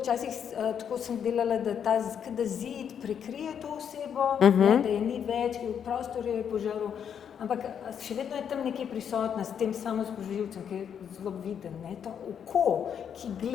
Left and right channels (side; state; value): right; quieter; 8.1 dB